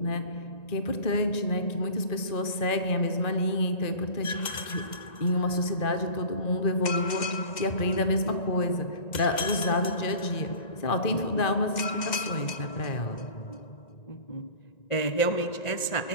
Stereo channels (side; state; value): right; late; 1.9 ms